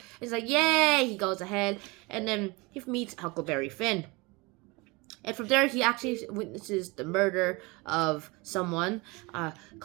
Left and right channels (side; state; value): left; quieter; 25.5 dB